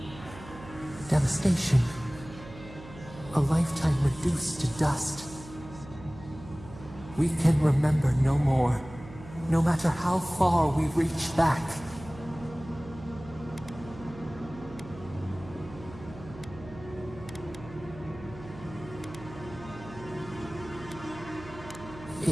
devastation, a lifetime reduced to dust. We can remember no more, no matter how far we reach back.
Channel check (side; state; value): right; noise; hum, 16 dB below the sound